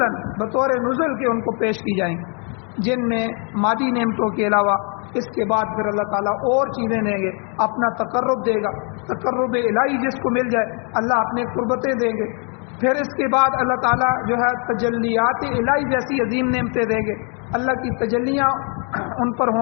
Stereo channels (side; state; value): right; quieter; 38.9 dB